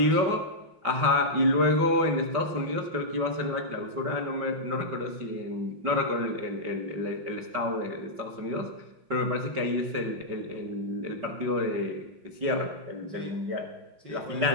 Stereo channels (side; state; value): left; late; 5.3 ms